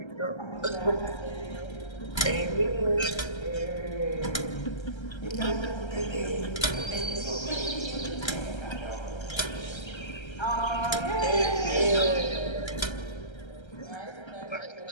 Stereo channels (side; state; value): right; late; 1.3 ms